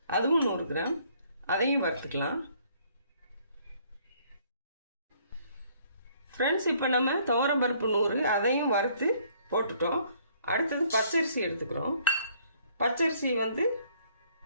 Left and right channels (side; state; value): both; inverted; correlation -0.63